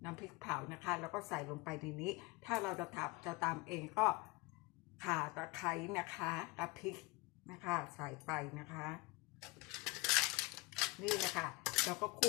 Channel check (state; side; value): quieter; right; 23.5 dB